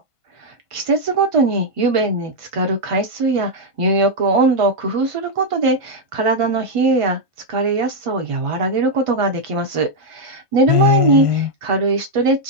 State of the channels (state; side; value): late; left; 1.5 ms